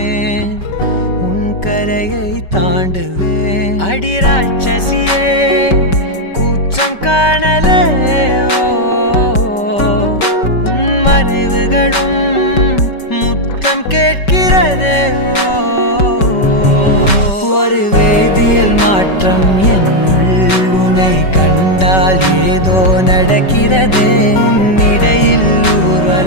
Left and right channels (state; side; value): late; right; 5.2 ms